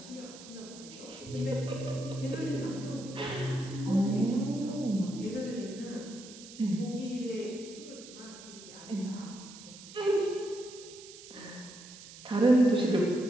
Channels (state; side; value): noise; right; hiss, 16 dB below the sound